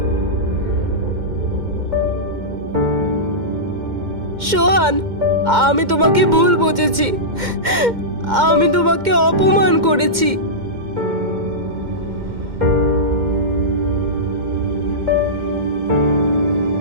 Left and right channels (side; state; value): left; late; 2.1 ms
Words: সোহান, আমি তোমাকে ভুল বুঝেছি। আমি তোমাকে অপমান করেছি।